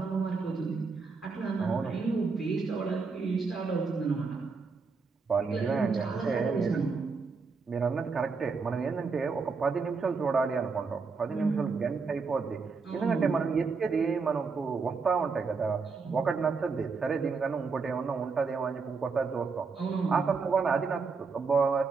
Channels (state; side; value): quieter; left; 4.8 dB